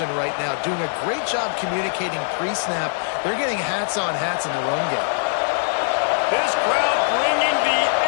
right now, doing a great job communicating pre-snap. They're getting hats on hats in the run game. This crowd bringing the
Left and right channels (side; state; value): right; silent; 61 dB below the other